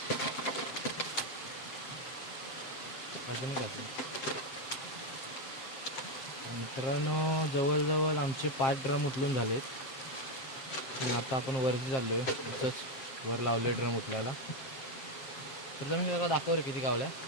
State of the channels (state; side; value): late; right; 7.6 ms